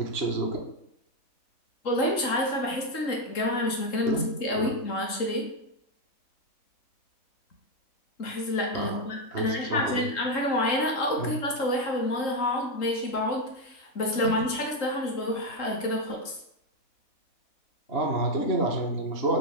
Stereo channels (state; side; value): late; right; 3.8 ms